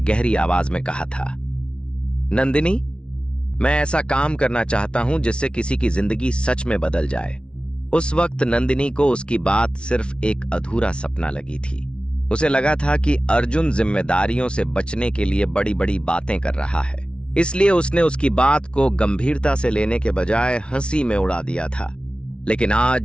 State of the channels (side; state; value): right; late; 0.058 ms